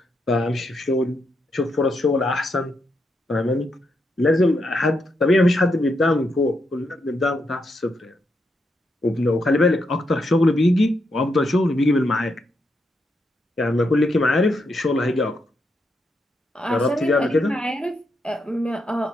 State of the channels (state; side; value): normal; both; correlation 0.81